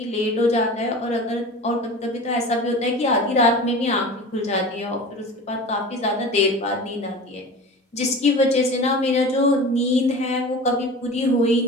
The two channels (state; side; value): normal; both; correlation 0.35